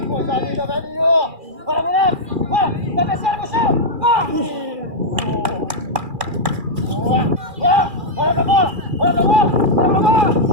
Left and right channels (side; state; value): left; late; 2.4 ms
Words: Coisa linda, velhinho! Bora, moleque! Bora! Cabeceira no chão! Olha pra bola! Olha pra bola! Olha pra bola!